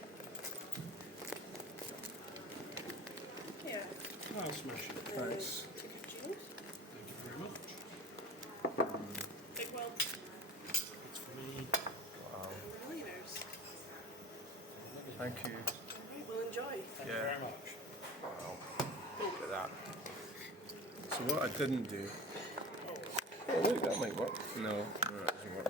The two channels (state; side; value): normal; both; correlation 0.36